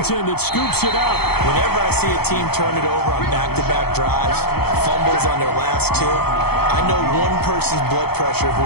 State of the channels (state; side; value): late; right; 0.96 ms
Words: that scoops it up. Whenever I see a team turn it over on back-to-back drives, fumbles on their last two, I know one person's blood pressure